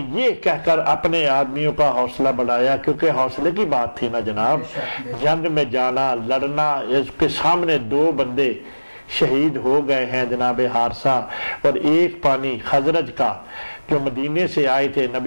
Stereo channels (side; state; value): both; inverted; correlation -1.00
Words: یہ کہہ کر اپنے آدمیوں کا حوصلہ بڑھایا، کیونکہ حوصلے کی بات تھی نا جناب، جنگ میں جانا لڑنا، اس کے سامنے 2 بندے شہید ہو گئے ہیں جناب حارثہ اور ایک پانی خزرج کا جو مدینے سے آئے تھے